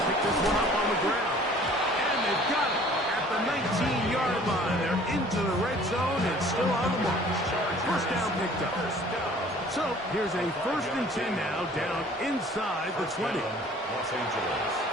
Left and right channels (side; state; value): both; normal; correlation 0.52